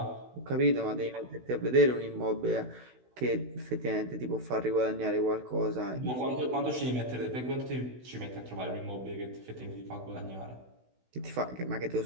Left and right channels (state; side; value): late; left; 16 ms